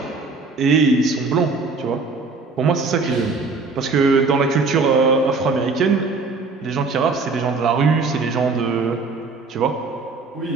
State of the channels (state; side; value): quieter; left; 4.1 dB